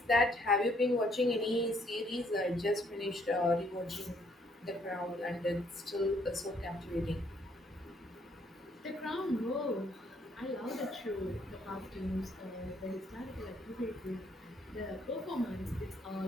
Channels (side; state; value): both; normal; correlation 0.67